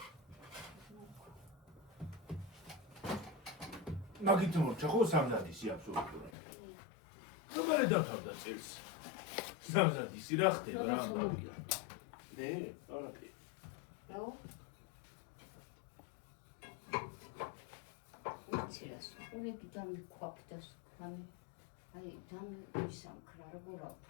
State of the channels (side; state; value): right; drops out; at 6.3 s